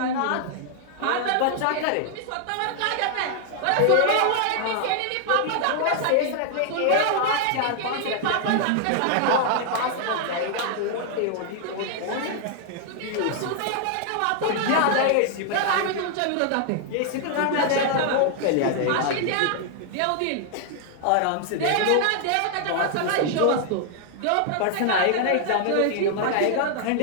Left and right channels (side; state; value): both; different; correlation 0.00